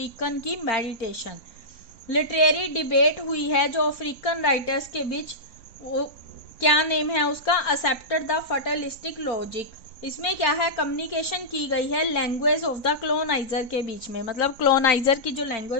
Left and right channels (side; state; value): right; late; 3.9 ms